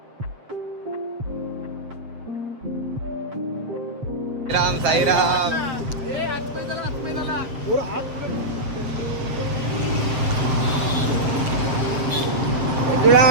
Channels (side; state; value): left; late; 7.8 ms